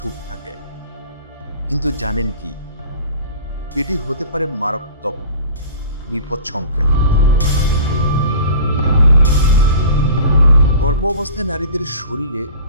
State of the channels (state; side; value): inverted; both; correlation -0.41